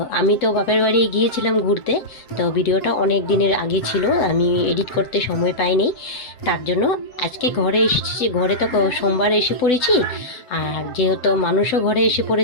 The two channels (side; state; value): right; late; 7.5 ms